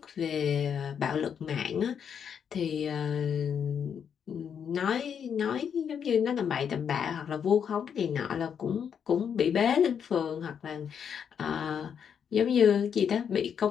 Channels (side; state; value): right; quieter; 7.7 dB